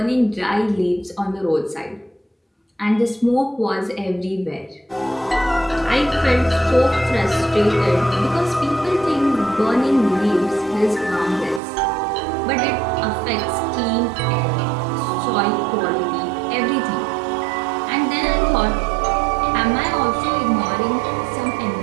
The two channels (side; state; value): left; drops out; at 11.6 s